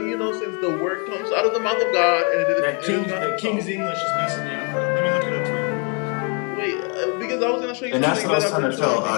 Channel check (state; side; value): quieter; right; 36.4 dB